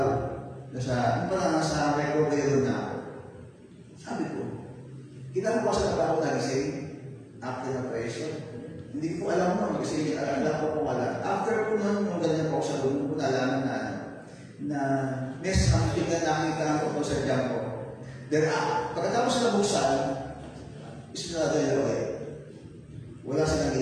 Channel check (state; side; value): identical; both; correlation 1.00